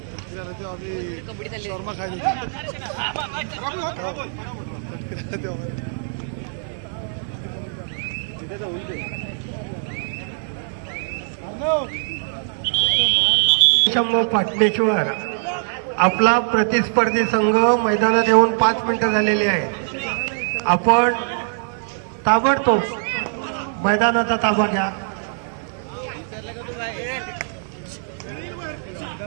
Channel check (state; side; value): silent; left; digital silence